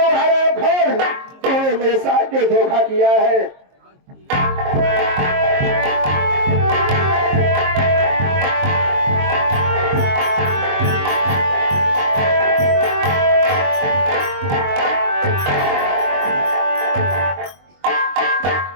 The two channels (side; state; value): left; late; 22 ms